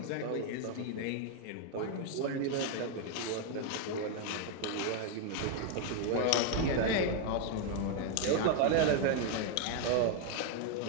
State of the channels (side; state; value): both; different; correlation 0.01